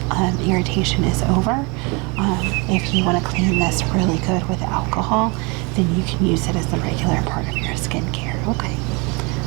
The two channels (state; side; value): quieter; left; 29.3 dB